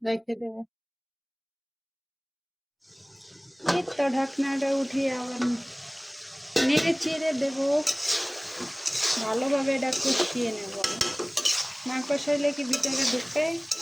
রেখে দেবে। এই তো ঢাকনাটা উঠিয়ে আবার নেড়ে চেড়ে দেবো, ভালোভাবে এটা কষিয়ে নেব। না কষাইলে কি ভিতরে ঢুকে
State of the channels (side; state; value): both; identical; correlation 1.00